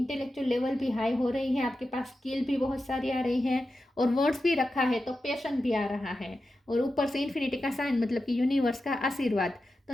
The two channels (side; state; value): both; normal; correlation 0.91